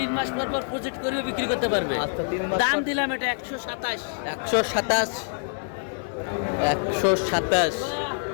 মাস পর পর প্রজেক্ট করে বিক্রি করতে পারবে। আচ্ছা 3 মাস দাম দিলাম এটা 127। 127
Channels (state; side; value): silent; right; digital silence